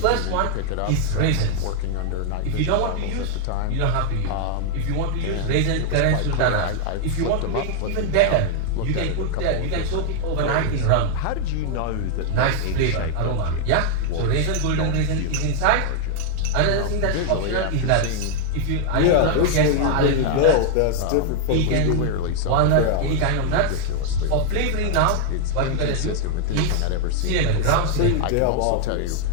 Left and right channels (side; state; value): both; different; correlation 0.00